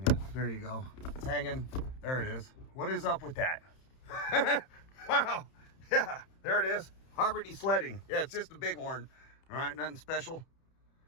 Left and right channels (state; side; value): late; right; 31 ms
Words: There you go. It's hanging. There it is. What is up with that? Wow. Yeah, there it is. Harvard sledding. Yeah, it's just a bighorn. All right, nothing special.